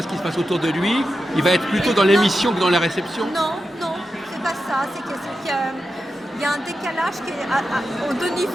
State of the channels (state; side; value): normal; both; correlation 0.90